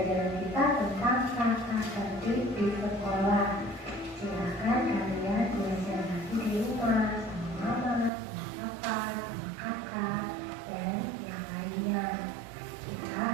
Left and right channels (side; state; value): left; drops out; at 8.1 s